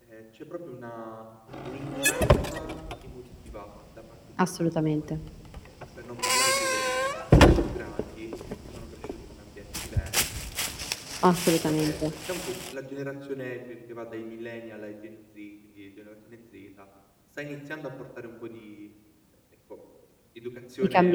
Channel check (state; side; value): identical; both; correlation 1.00